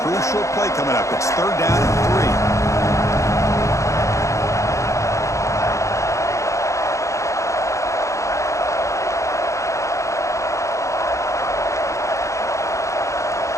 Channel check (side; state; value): right; late; 0.15 ms